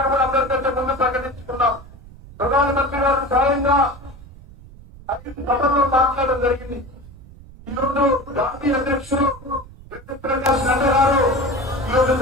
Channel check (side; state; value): right; noise; rumble, 19 dB below the sound